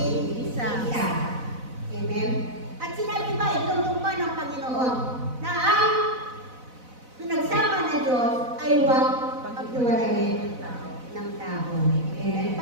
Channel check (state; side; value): late; left; 4.0 ms